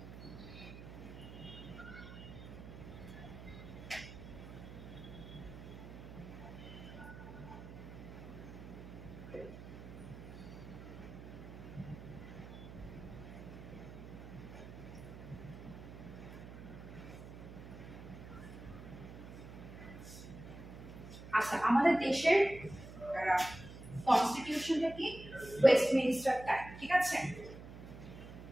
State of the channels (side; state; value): right; noise; hum, 13 dB below the sound